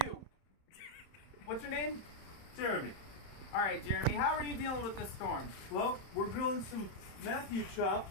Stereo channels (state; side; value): late; right; 31 ms